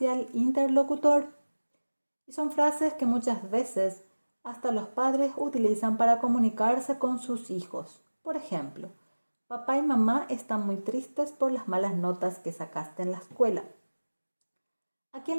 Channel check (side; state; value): both; inverted; correlation -1.00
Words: el interlocutor. Y son frases que muchas veces hasta los padres utilizan para comunicarse con sus hijos. Por ejemplo, papá y mamá están muy tristes por las malas notas que sacaste en la escuela. Aquí